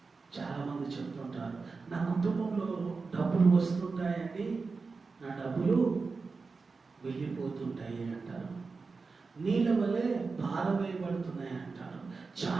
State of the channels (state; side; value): quieter; left; 4.4 dB